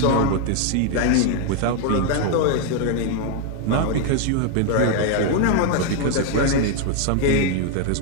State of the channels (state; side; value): different; both; correlation 0.01